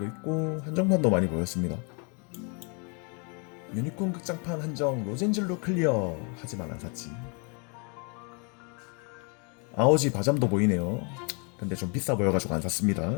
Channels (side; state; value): right; quieter; 35.1 dB